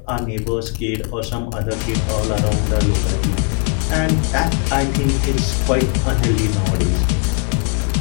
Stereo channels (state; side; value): quieter; right; 37.7 dB